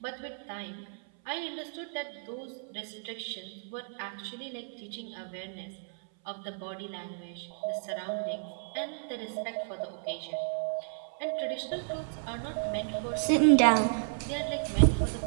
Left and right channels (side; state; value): left; silent; 56 dB below the other